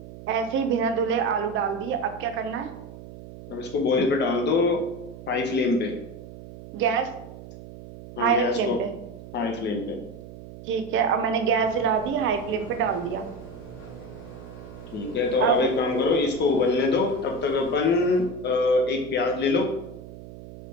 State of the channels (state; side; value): noise; right; hum, 15 dB below the sound